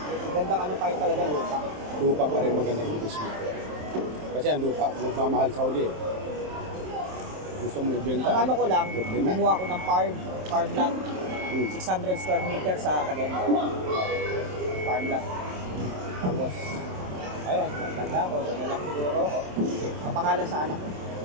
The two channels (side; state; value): left; late; 27 ms